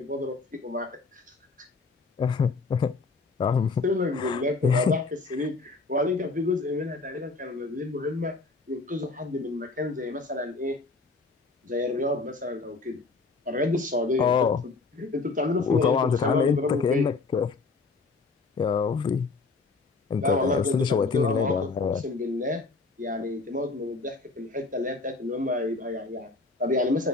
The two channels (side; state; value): right; quieter; 4.0 dB